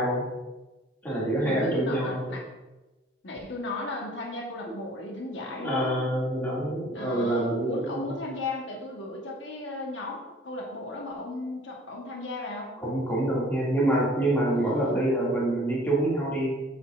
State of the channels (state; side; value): normal; both; correlation 0.52